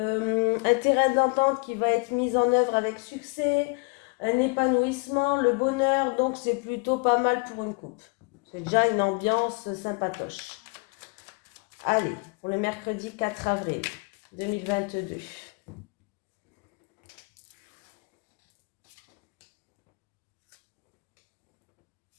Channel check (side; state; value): right; quieter; 32.1 dB